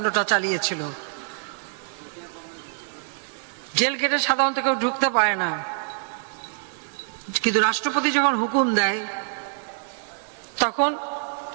চালিয়েছিল। জেল গেটে সাধারণত কেউ ঢুকতে পারে না, কিন্তু রাষ্ট্রপতি যখন হুকুম দেয় তখন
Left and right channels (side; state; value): left; silent; 61 dB below the other